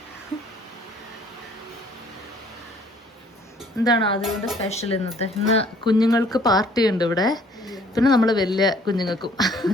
എന്താണ് അതുകൊണ്ട് സ്പെഷ്യൽ ഇന്നത്തെ? ഇന്ന് കുഞ്ഞുങ്ങൾക്ക് പാർട്ടി ഉണ്ട് ഇവിടെ, പിന്നെ നമ്മൾ വലിയ കുഞ്ഞുങ്ങൾക്കും.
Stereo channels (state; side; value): normal; both; correlation 0.58